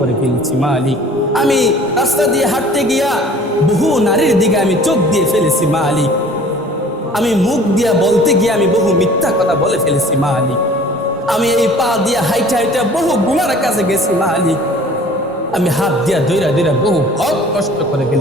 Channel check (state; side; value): normal; both; correlation 0.49